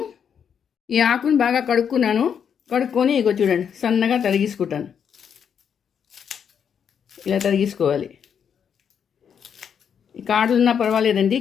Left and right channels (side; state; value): right; quieter; 7.7 dB